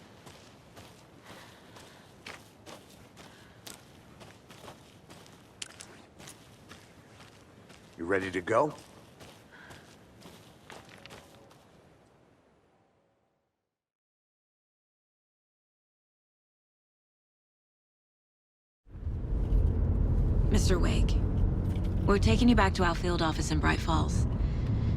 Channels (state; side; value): identical; both; correlation 1.00